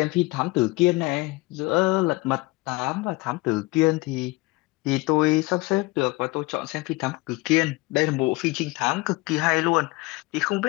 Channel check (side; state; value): right; quieter; 22.4 dB